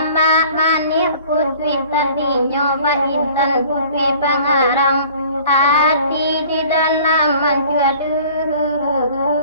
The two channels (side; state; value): both; inverted; correlation -0.49